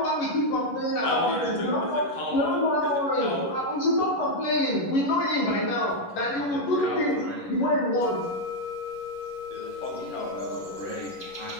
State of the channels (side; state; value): right; late; 11 ms